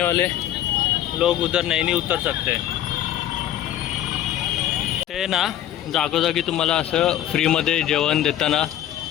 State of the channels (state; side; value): quieter; right; 12.0 dB